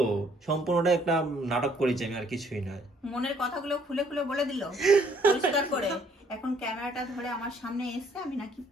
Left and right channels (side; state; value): both; normal; correlation 0.64